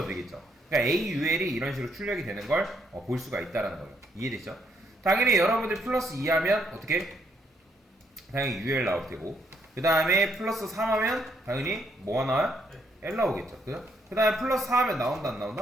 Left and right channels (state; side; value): normal; both; correlation 0.73